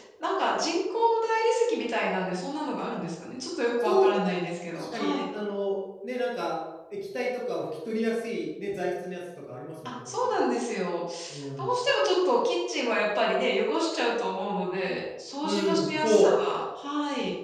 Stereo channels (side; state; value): both; identical; correlation 1.00